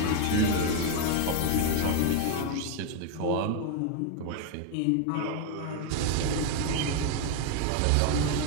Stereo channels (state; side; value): different; both; correlation 0.01